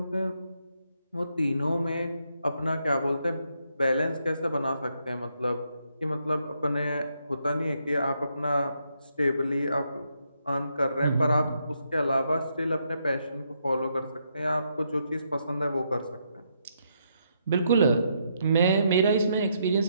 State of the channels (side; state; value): both; inverted; correlation -0.77